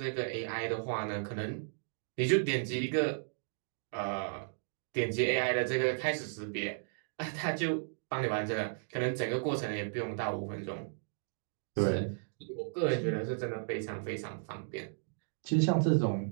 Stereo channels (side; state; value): left; silent; digital silence